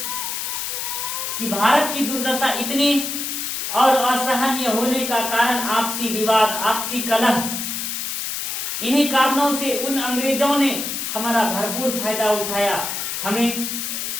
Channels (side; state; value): left; noise; hiss, 3 dB below the sound